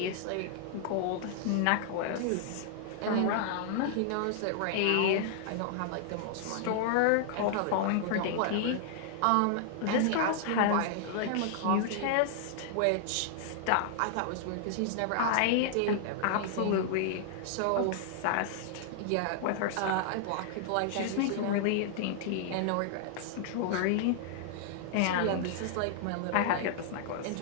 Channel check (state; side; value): different; both; correlation -0.01